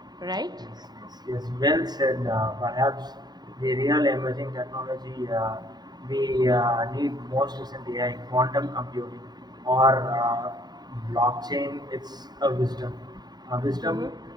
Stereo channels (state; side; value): late; left; 0.20 ms